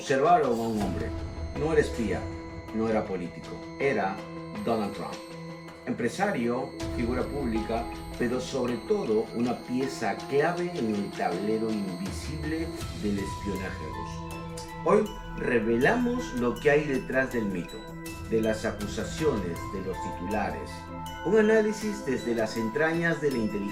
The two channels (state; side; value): identical; both; correlation 1.00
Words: a un hombre. No era espía, no era político, era Donald Trump. Empresario, figura pública, pero sobre todo una pieza clave en el tablero invisible del espionaje ruso. Hoy revelamos lo que hay detrás del mito, de las acusaciones, de los titulares. Un análisis desde las entrañas de la